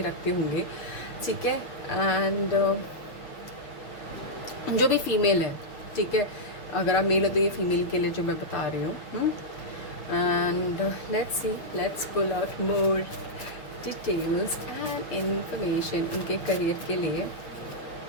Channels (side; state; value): right; late; 6.5 ms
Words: रखते होंगे। ठीक है, एंड जो भी फीमेल है, ठीक है, अगर आप मेल हो तो ये फीमेल के लिए जो मैं बता रही हूँ। And let's pull out more details and information उनके करियर के लिए।